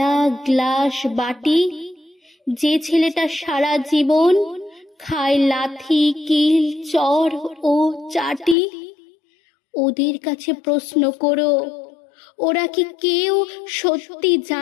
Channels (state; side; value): drops out; right; at 8.6 s